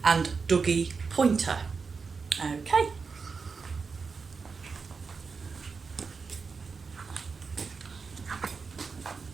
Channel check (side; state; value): left; quieter; 5.0 dB